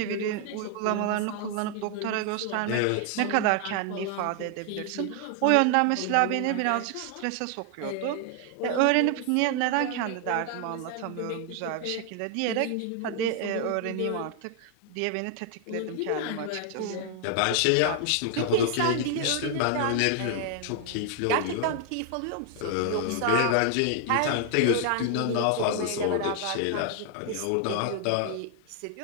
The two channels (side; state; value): both; different; correlation 0.00